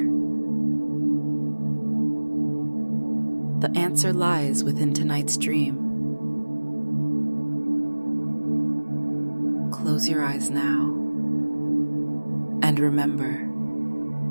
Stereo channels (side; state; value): both; inverted; correlation -1.00